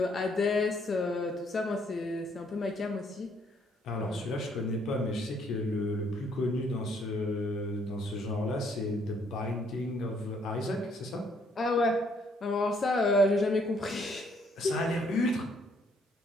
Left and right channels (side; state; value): both; normal; correlation 0.67